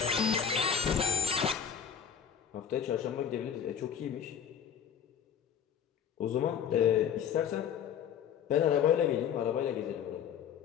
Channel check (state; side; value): quieter; right; 8.1 dB